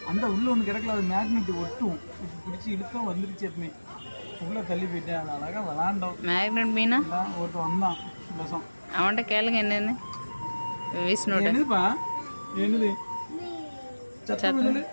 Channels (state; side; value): inverted; both; correlation -1.00